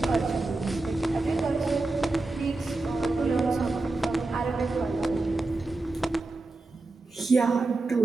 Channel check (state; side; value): quieter; left; 3.2 dB